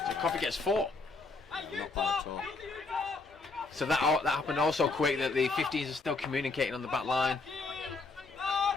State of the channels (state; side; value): quieter; right; 3.8 dB